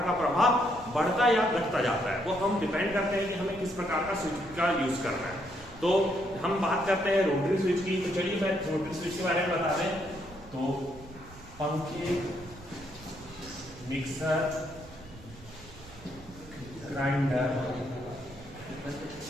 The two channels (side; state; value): right; noise; rumble, 20 dB below the sound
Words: का प्रभाव बढ़ता या घटता जाता है। वो हम डिपेंड करते हैं कि हमें किस प्रकार का स्विच का यूज करना है। तो हम बात करते हैं रोटरी स्विच की। तो चलिए मैं रोटरी स्विच के बारे में बता दें। तो पंखे, मिक्सर, ग्राइंडर